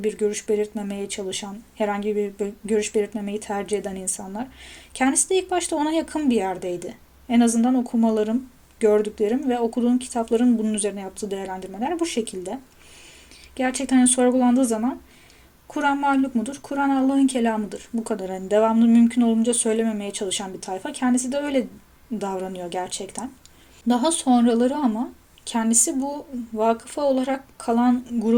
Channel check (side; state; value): both; identical; correlation 1.00